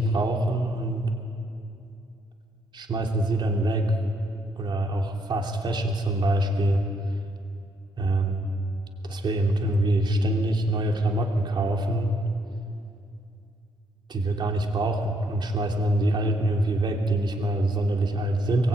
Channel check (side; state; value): both; normal; correlation 0.72